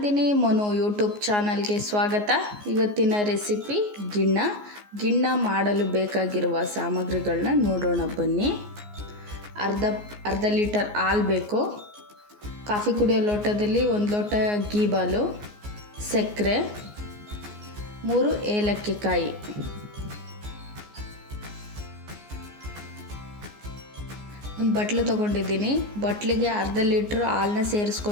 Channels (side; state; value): left; late; 14 ms